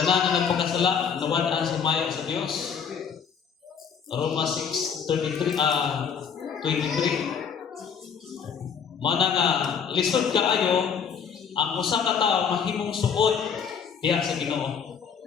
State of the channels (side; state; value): right; quieter; 6.9 dB